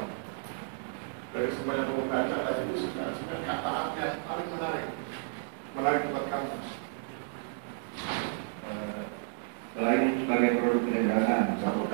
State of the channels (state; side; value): silent; left; digital silence